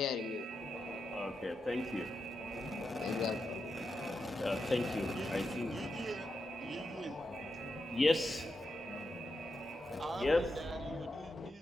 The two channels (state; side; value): normal; both; correlation 0.86